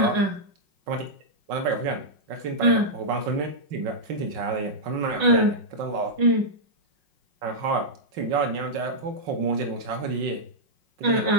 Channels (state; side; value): late; left; 5.5 ms